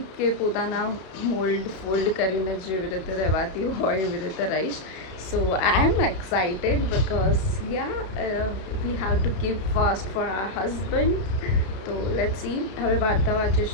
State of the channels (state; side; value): late; right; 32 ms